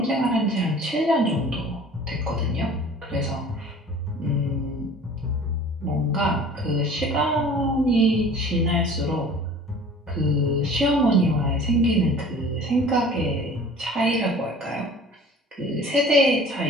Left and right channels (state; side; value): normal; both; correlation 0.45